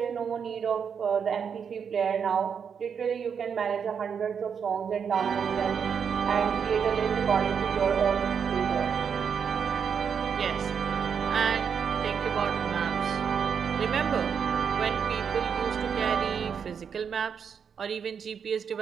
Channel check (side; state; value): left; quieter; 7.0 dB